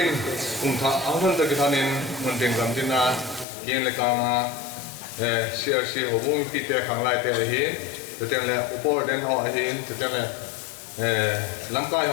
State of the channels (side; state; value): right; drops out; at 3.5 s